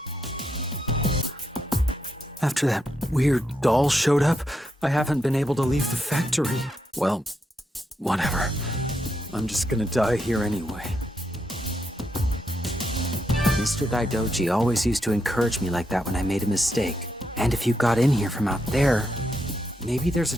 After that weird doll showed up, I haven't been able to leave the factory. Well, whatever. I'm just gonna die here anyway. Mr. Daidoji always used to encourage me like that when I made a mistake. And if you got in here from out there, maybe there's a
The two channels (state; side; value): normal; both; correlation 0.81